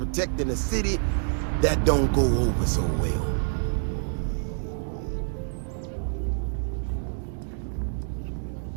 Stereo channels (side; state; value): left; silent; digital silence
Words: the city, that don't go over so well.